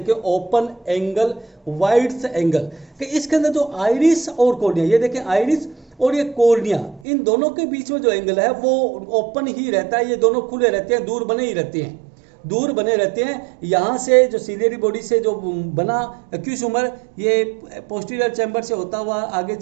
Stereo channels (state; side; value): drops out; left; at 7.0 s